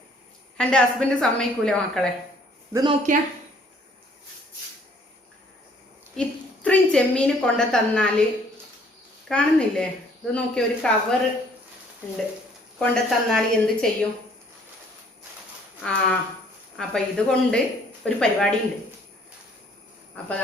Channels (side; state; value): both; normal; correlation 0.60